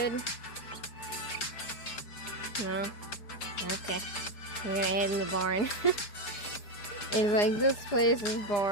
No? Okay. We're gonna head in the barn. It's like, this place is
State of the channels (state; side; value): late; right; 4.9 ms